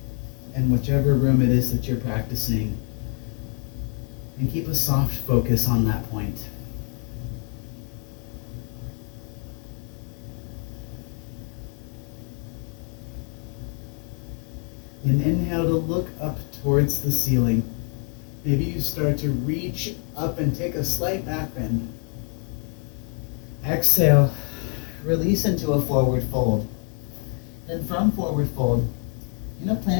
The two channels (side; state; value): right; quieter; 39.5 dB